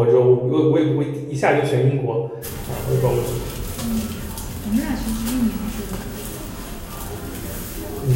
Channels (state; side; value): identical; both; correlation 1.00